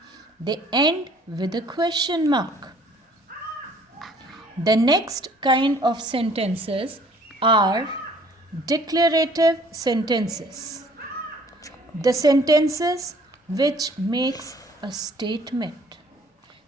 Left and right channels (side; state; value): both; normal; correlation 0.57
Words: they end with a question mark. The next kind of sentences are declarative sentences. The sentences which makes a statement.